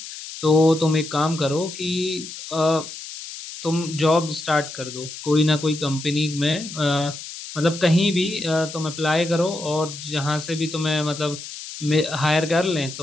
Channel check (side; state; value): left; noise; hiss, 11 dB below the sound